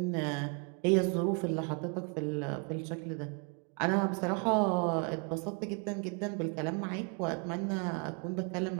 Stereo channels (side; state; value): left; quieter; 37.2 dB